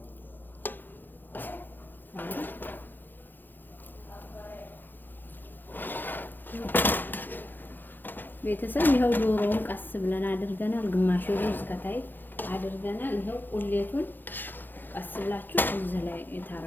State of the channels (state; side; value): late; right; 0.091 ms